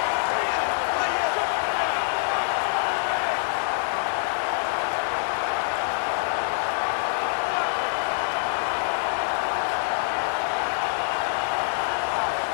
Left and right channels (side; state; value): right; silent; 56 dB below the other